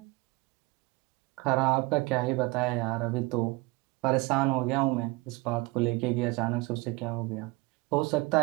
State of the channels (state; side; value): quieter; left; 24.1 dB